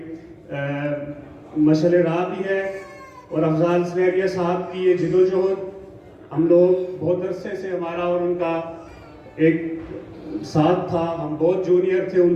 مشعل راہ بھی ہے۔ اور افضال سہریہ صاحب کی یہ جدوجہد ہم لوگ بہت عرصے سے ہمارا اور ان کا ایک ساتھ تھا، ہم بہت جونیئر تھے ان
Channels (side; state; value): both; identical; correlation 1.00